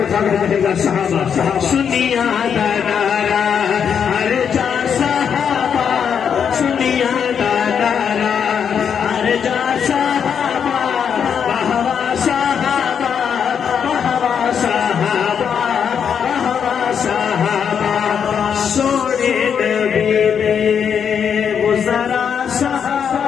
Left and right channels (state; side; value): quieter; right; 7.5 dB